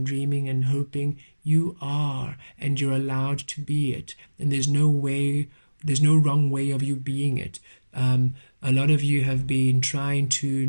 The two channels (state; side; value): inverted; both; correlation -1.00